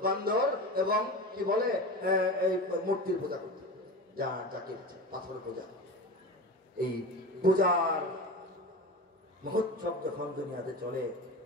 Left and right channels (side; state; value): both; normal; correlation 0.28